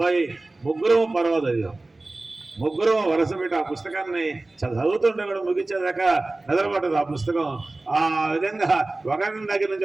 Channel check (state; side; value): quieter; left; 3.0 dB